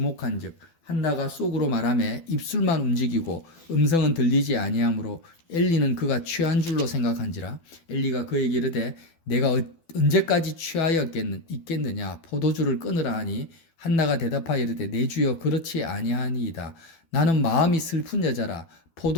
한나가 속으로 말하며 입술만 움직이고 음성은 들리지 아니하므로 엘리는 그가 취한 줄로 생각한지라. 엘리가 그에게 이르되 내가 언제까지 취하여 있겠느냐 포도주를 끊으라 하니 한나가 대답하여 이르되 내 주여 그렇지 아니하니이다. 나는 마음이 슬픈 여자라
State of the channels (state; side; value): late; right; 12 ms